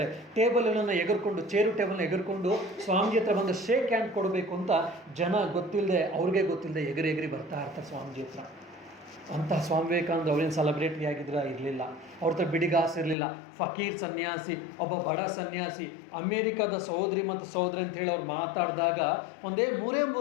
ಟೇಬಲ್ಗಳನ್ನು ಎಗರ್ಕೊಂಡು, ಚೇರು ಟೇಬಲ್ನ ಎಗರ್ಕೊಂಡು ಸ್ವಾಮೀಜಿ ಹತ್ರ ಬಂದು ಶೇಕ್ ಹ್ಯಾಂಡ್ ಕೊಡಬೇಕು ಅಂತ ಜನ ಗೊತ್ತಿಲ್ಲದೆ, ಅವ್ರಿಗೆ ಗೊತ್ತಿಲ್ಲದೆ ಎಗರಿ ಬರ್ತಾ ಇರ್ತಾರೆ ಸ್ವಾಮೀಜಿ ಹತ್ರ. ಅಂತಹ ಸ್ವಾಮಿ ವಿವೇಕಾನಂದ ಅವ್ರೇನು ಸೆಲೆಬ್ರಿಟಿ ಆಗಿದ್ರೆ ಇರಲಿಲ್ಲ, ಅವ್ರ ಹತ್ರ ಬಿಡಿಗಾಸು ಇರಲಿಲ್ಲ. ಫಕೀರ್ ಸನ್ಯಾಸಿ, ಒಬ್ಬ ಬಡ ಸನ್ಯಾಸಿ, ಅಮೇರಿಕಾದ ಸಹೋದರಿ ಮತ್ತು ಸಹೋದರಿ ಅಂತೇಳಿ ಅವ್ರು ಮಾತಾಡಿದಾಗ ಒಂದೇ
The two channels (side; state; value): right; drops out; at 13.2 s